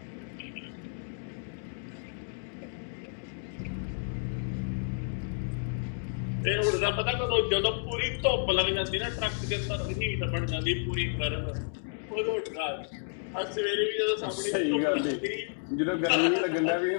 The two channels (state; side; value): silent; right; digital silence